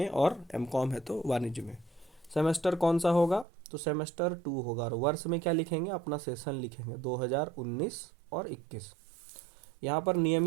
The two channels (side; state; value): left; drops out; at 3.5 s